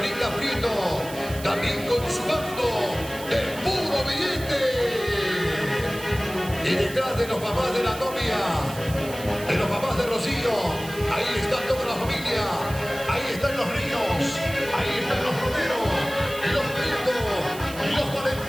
Prieto, también con su bando de puro billete. Y detrás de los papás de la novia, de los papás de Rocío, ahí está toda la familia, ahí están los Ríos, ahí están los Romero, los Prieto, los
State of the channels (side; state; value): right; noise; hiss, 14 dB below the sound